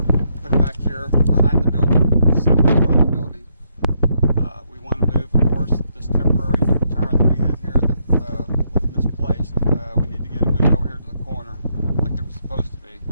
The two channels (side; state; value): both; inverted; correlation -0.76